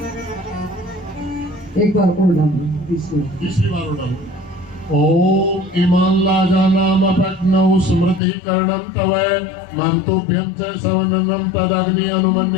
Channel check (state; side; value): drops out; right; at 8.2 s